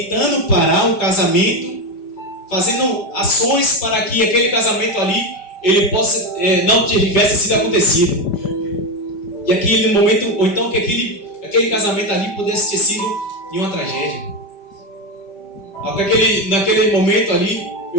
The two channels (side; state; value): right; late; 5.1 ms